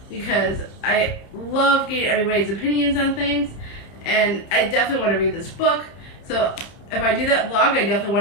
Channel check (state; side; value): late; right; 30 ms